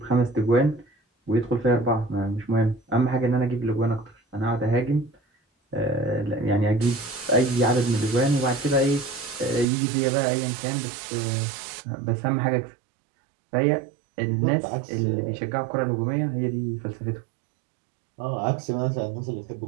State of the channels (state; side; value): drops out; left; at 9.7 s